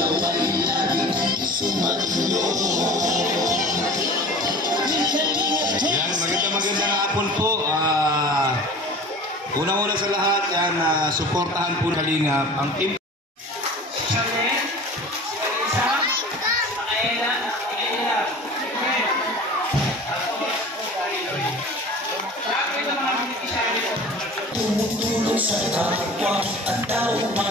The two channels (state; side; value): normal; both; correlation 0.40